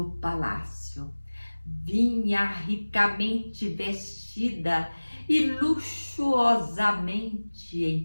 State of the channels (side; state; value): both; inverted; correlation -1.00